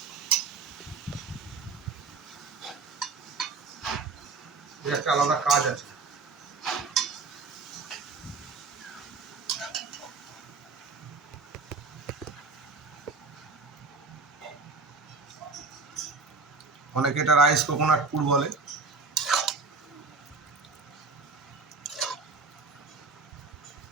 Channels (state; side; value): quieter; left; 4.2 dB